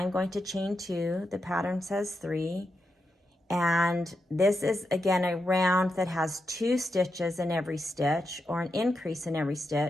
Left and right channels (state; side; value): normal; both; correlation 0.86